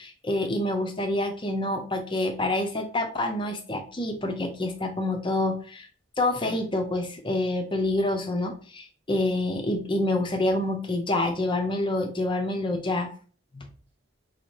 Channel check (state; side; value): normal; both; correlation 0.56